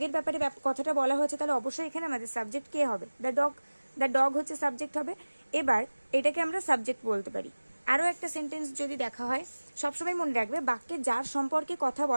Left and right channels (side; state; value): both; inverted; correlation -1.00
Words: ব্যাপারে কথাটা বলা হয়েছে, তাহলে অবশ্যই এখানে আমাদের সাবজেক্ট কে হবে? দ্য ডগ হচ্ছে সাবজেক্ট হবে। এবার এটাকে আমরা সাবজেক্ট বলতে পারি। আরও একটা সেন্টেন্স যদি দেখা হয়, সবসময় মনে রাখবে বাক্যে যার সম্পর্কে কথা